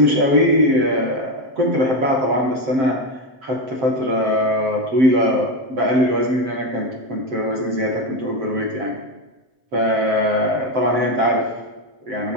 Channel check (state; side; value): late; left; 7.6 ms